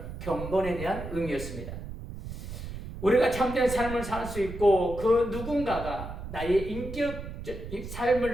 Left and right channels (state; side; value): noise; right; rumble, 9 dB below the sound